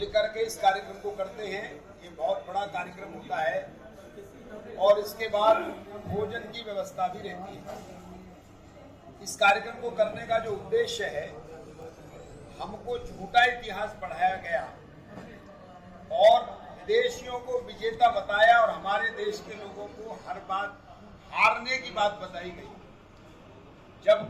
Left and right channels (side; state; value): both; identical; correlation 1.00